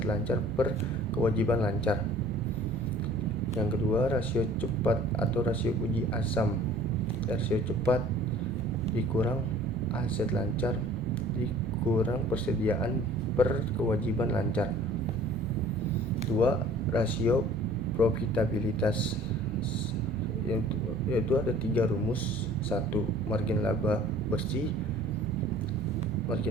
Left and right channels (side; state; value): both; normal; correlation 0.50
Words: lancar per kewajiban lancar. Yang kedua, rasio cepat atau rasio uji asam. Rasio cepat dikurang aset lancar dikurang persediaan per kewajiban lancar. 2. Rasio profitabilitas, yaitu ada 3 rumus. 1. Margin laba bersih.